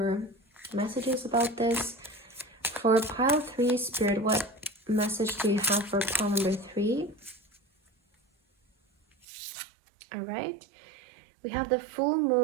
messages about this. For pile 3, Spirit, what message do you have for pile number 3? All right. We have the full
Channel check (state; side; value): drops out; left; at 9.2 s